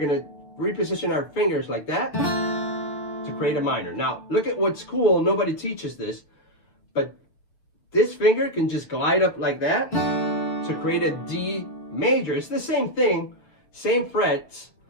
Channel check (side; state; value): right; late; 6.8 ms